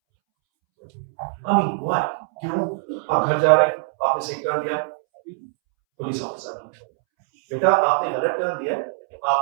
I mean, why? क्यों? आप घर जा रहे हैं, आपने सही टर्न दिया, पुलिस ऑफिसर बेटा आपने गलत टर्न दिया,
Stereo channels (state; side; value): silent; left; 64 dB below the other